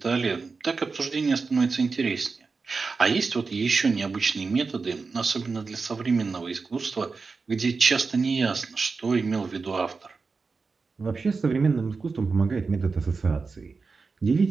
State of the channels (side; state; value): left; quieter; 4.5 dB